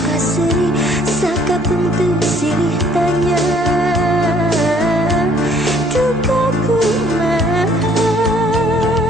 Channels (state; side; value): normal; both; correlation 0.60